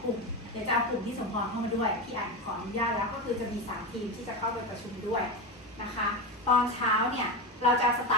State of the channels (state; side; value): normal; both; correlation 0.18